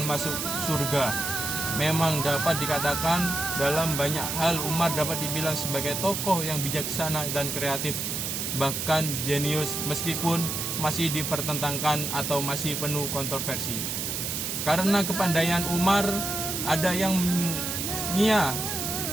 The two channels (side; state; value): right; noise; hiss, 2 dB below the sound